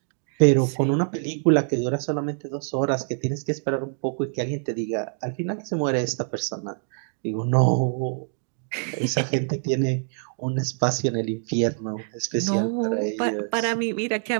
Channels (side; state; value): left; silent; digital silence